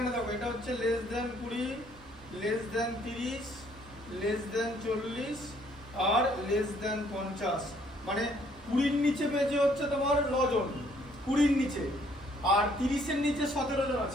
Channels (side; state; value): both; normal; correlation 0.64